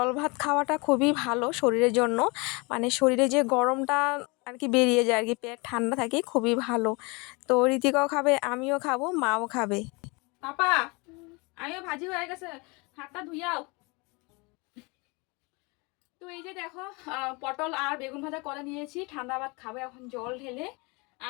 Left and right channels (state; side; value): quieter; right; 28.1 dB